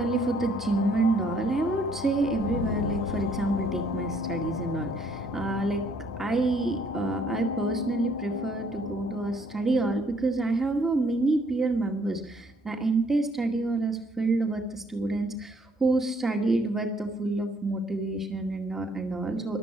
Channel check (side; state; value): both; normal; correlation 0.65